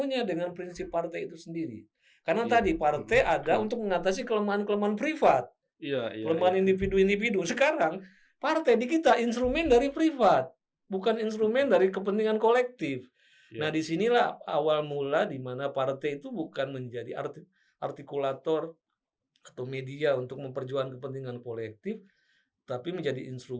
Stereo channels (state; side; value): identical; both; correlation 1.00